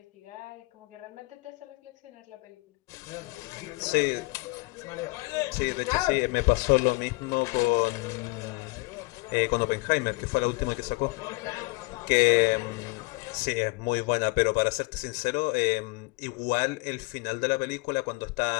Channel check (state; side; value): quieter; right; 25.8 dB